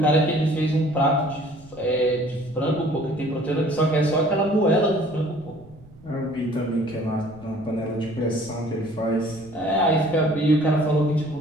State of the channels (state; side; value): noise; right; rumble, 23 dB below the sound